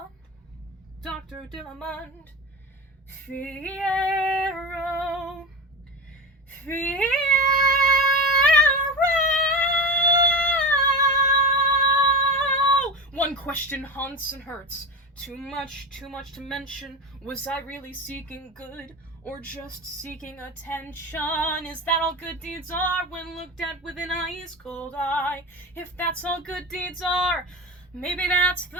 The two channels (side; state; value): both; normal; correlation 0.23